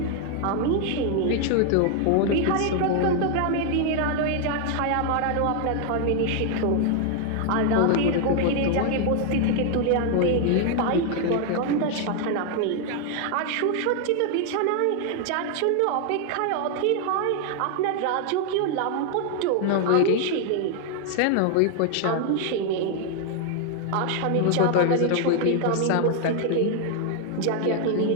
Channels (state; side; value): different; both; correlation 0.00